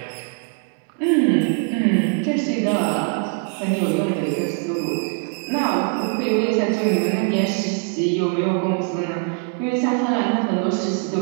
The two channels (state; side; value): quieter; left; 38.4 dB